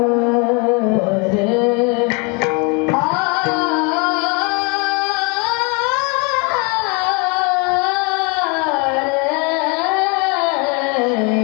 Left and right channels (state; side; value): quieter; right; 32.0 dB